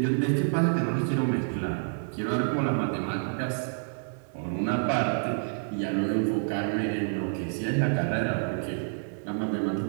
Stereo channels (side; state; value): left; silent; digital silence